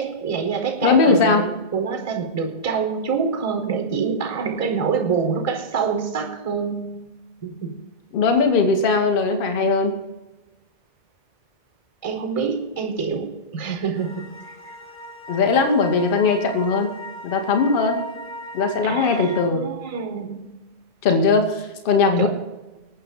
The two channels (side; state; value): right; late; 2.5 ms